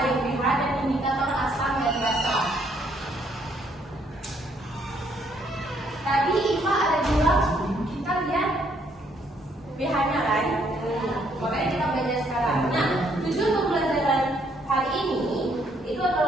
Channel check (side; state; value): both; normal; correlation 0.69